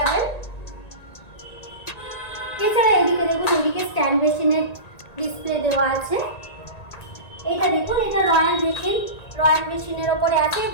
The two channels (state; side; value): late; right; 1.9 ms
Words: এছাড়া এদিকে দেখুন, এদিকে স্ট্যান্ড বেসিনের ডিসপ্লে দেওয়া আছে। এটা দেখুন, এটা রয়্যাল বেসিনের ওপরে আছে।